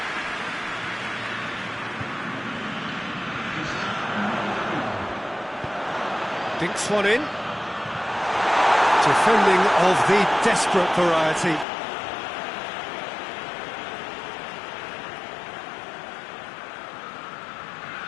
Dinks one in. Defending of the desperate variety.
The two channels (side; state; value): right; drops out; at 11.7 s